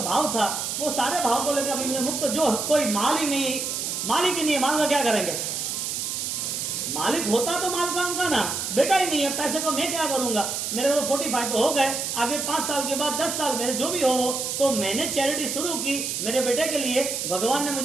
भाव था, वो सारे भाव को लेकर अभी मुझे मुक्त, जो कोई माल ही नहीं, मालिक ही नहीं है, माल में क्या करेंगे? मालिक होता तो माल का उनका ना, बेटा ही नहीं है, पैसे को मैं क्या करूंगा? मेरे को तो 45 तो हो गए, आगे 5 साल के बाद 10 साल मेरे जो भी हो, तो मैंने चैरिटी शुरू की मेरे बेटे के लिए। भगवान ने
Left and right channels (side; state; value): right; noise; hiss, 3 dB below the sound